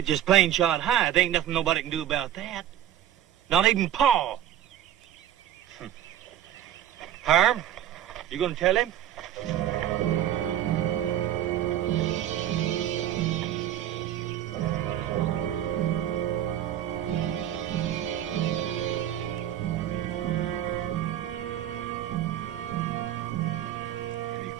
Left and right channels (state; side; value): quieter; left; 11.5 dB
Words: just plain shot high. There ain't nothing nobody can do about that. Not even Pa. Harm, you gonna tell him?